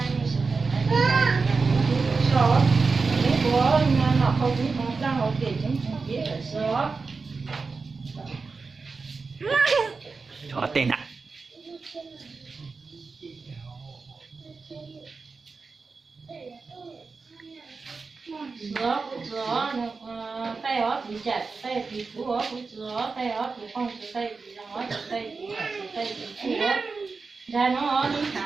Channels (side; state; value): left; quieter; 4.4 dB